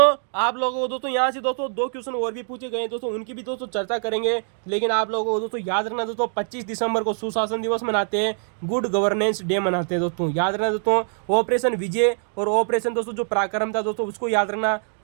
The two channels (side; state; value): left; silent; 57 dB below the other